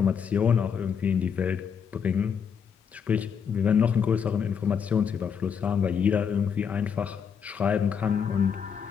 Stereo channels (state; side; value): quieter; right; 7.0 dB